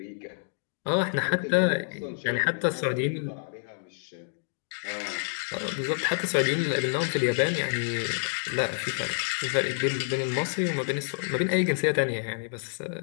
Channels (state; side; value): silent; right; digital silence